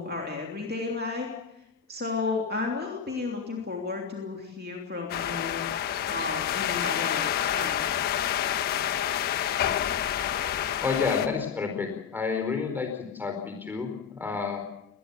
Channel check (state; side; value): quieter; right; 6.9 dB